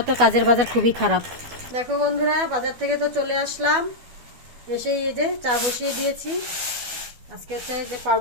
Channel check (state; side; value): late; left; 12 ms